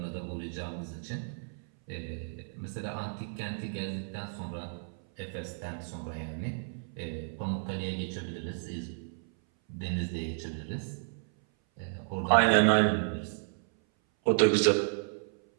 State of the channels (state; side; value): silent; left; 56 dB below the other